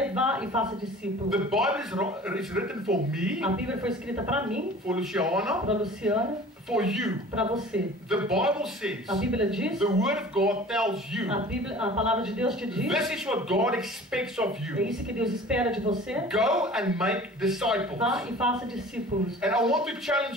vá e faça discípulos. The Bible is written for me, A Bíblia foi escrita para mim, for Luciana, para Luciana, for you. para você. The Bible says, A Bíblia diz, the Word of God tells you, a palavra de Deus te diz, this is what God expects of é you. isso que Deus espera de você. Go and make disciples. Vá e faça discípulos. And I want to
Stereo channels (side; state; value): both; normal; correlation 0.44